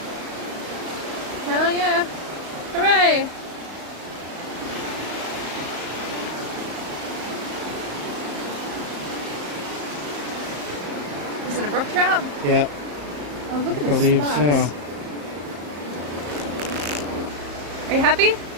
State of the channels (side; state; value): left; late; 34 ms